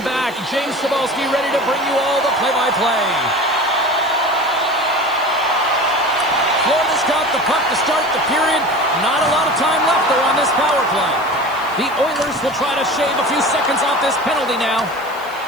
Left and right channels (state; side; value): noise; right; hiss, 22 dB below the sound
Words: back. James Cebulski ready to bring you all the play-by-play. Florida's got the puck to start the period. Not a lot of time left, though, on this power play. The Oilers will try to shave a few seconds off this penalty now.